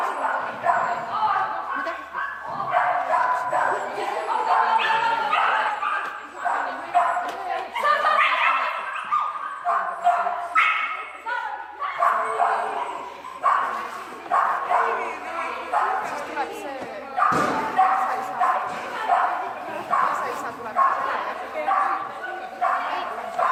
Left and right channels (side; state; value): both; identical; correlation 1.00